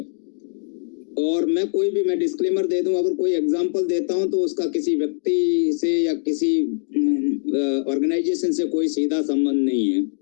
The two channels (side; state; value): right; silent; digital silence